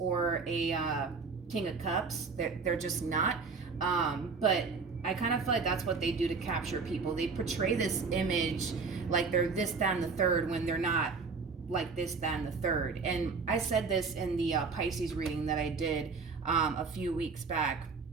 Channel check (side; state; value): left; quieter; 4.7 dB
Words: a King of Cups. They're just not. But I kind of feel like that's what they do to capture people. They portray this image like they're this, that, and the third, when they're not like this, that, and the third. And I said this in the Pisces reading that I did a few weeks back.